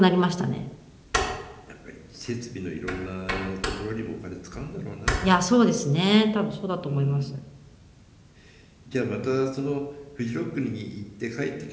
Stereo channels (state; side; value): identical; both; correlation 1.00